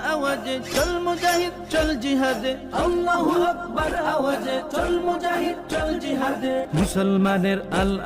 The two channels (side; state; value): both; identical; correlation 1.00